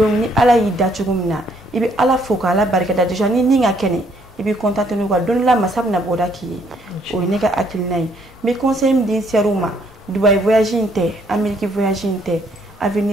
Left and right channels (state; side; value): normal; both; correlation 0.67